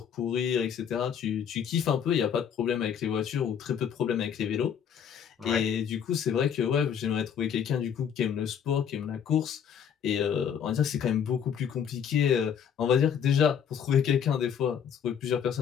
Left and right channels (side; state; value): right; quieter; 8.1 dB